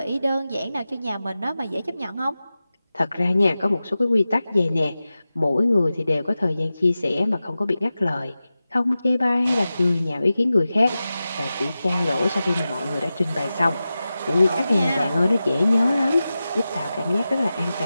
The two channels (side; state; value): both; inverted; correlation -0.94